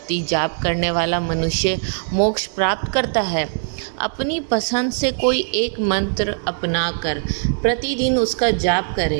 जाप करने वाला मनुष्य मोक्ष प्राप्त करता है। अपनी पसंद से कोई एक मंत्र अपनाकर प्रतिदिन उसका जाप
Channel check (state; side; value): silent; left; 65 dB below the other